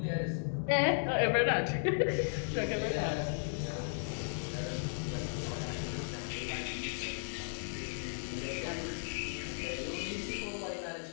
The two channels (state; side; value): silent; right; digital silence